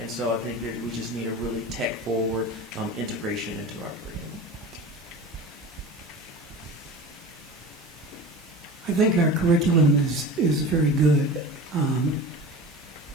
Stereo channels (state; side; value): normal; both; correlation 0.34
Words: so I think that we just need a really tech-forward integration into our curriculum. I think our curriculum is very good.